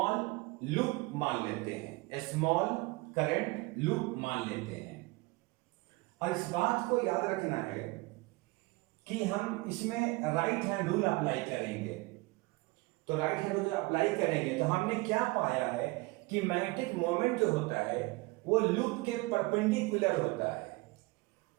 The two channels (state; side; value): quieter; left; 24.2 dB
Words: लूप मान लेते हैं, स्मॉल करंट लूप मान लेते हैं। और इस बात को याद रखना है कि हम इसमें राइट हैंड रूल अप्लाई करेंगे। तो राइट हैंड रूल अप्लाई करेंगे तो हमने क्या पाया है कि मैग्नेटिक मोमेंट जो होता है वो लूप के परपेंडिकुलर होता है।